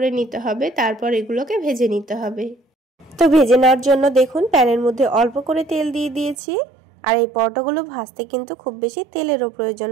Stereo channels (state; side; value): drops out; left; at 6.4 s